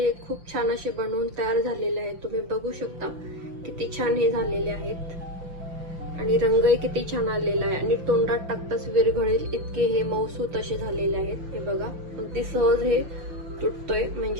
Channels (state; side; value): late; left; 5.8 ms